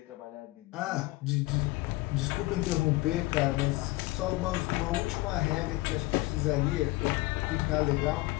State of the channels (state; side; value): quieter; right; 20.7 dB